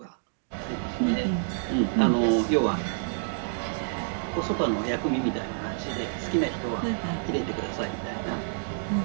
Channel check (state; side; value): silent; left; digital silence